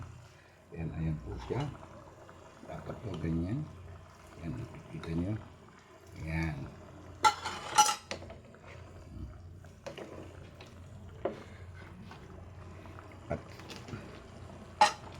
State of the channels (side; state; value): both; identical; correlation 1.00